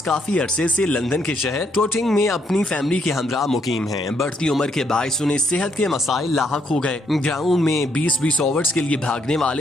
काफी अरसे से लंदन के शहर टोटिंग में अपनी फैमिली के हमरा मुकीम हैं। बढ़ती उम्र के बायस उन्हें सेहत के मसाइल लाहक हो गए। ग्राउंड में 20-20 ओवर्स के लिए भागने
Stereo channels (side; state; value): both; normal; correlation 0.73